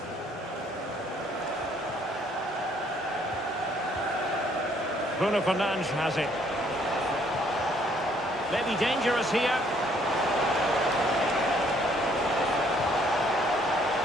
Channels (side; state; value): both; normal; correlation 0.65